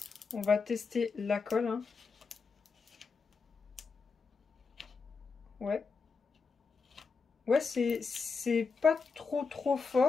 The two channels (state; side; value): quieter; right; 4.9 dB